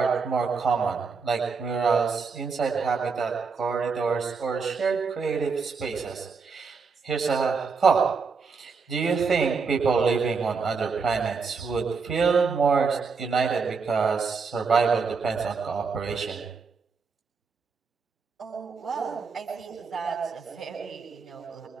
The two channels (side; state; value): left; quieter; 5.2 dB